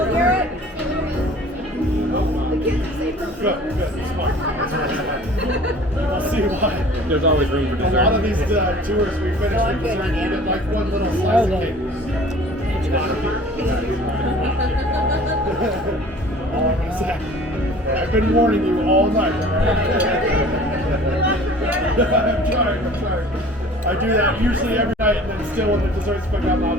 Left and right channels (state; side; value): normal; both; correlation 0.47